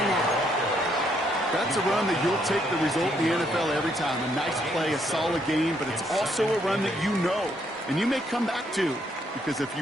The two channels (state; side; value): normal; both; correlation 0.72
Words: now. That's a run that you'll take the result in the NFL every time. A nice play, a solid game, but it's also a run that you know and you may come back to, because if